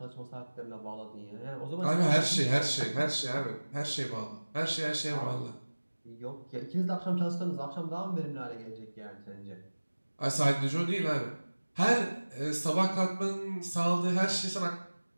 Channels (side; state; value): both; inverted; correlation -1.00